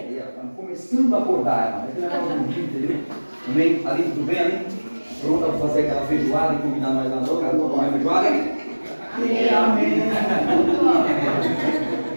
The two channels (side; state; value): both; inverted; correlation -1.00